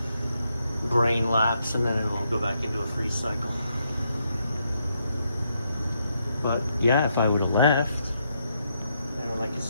brain lapse, and then it'll go back into a freeze cycle. But yeah, if I would have left, I could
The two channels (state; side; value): inverted; both; correlation -0.78